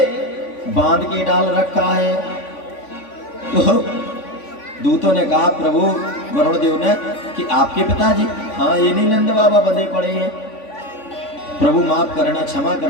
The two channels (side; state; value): right; late; 3.5 ms